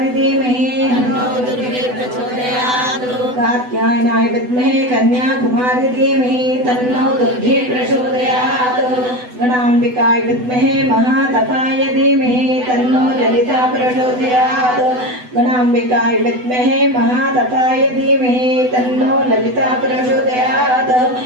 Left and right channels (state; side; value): late; left; 8.0 ms